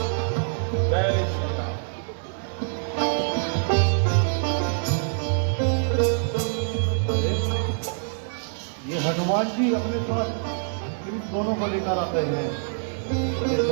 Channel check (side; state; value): left; silent; digital silence